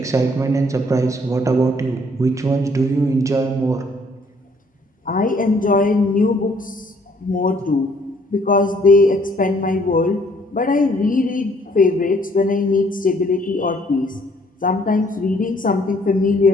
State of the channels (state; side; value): normal; both; correlation 0.63